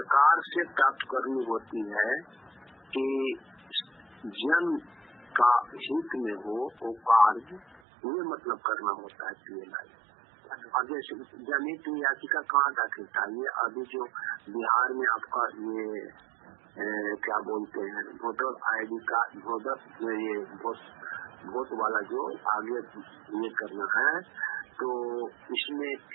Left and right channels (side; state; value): left; drops out; at 7.8 s